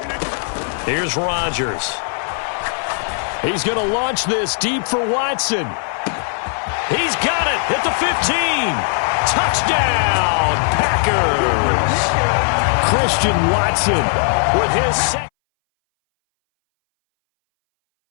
Here's Rodgers. He's going to launch this deep for Watson. He's got it at the 15. Touchdown, Packers. Christian Watson with his second.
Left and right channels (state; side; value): silent; right; 63 dB below the other